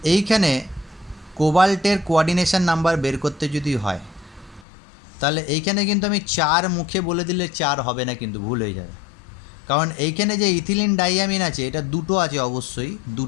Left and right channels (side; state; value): right; drops out; at 4.7 s